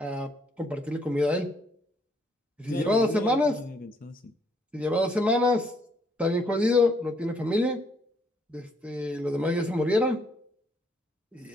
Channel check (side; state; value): both; normal; correlation 0.69